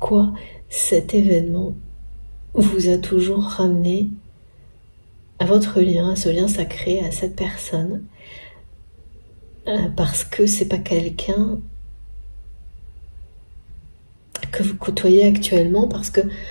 cet événement vous a toujours ramené à votre lien, à ce lien sacré, à cette personne. Parce que c'est pas quelqu'un que vous côtoyez actuellement, parce que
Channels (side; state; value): both; inverted; correlation -1.00